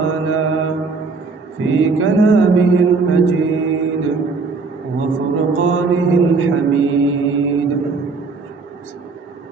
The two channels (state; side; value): quieter; left; 4.3 dB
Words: في كلامه المجيد وفرقانه الحميد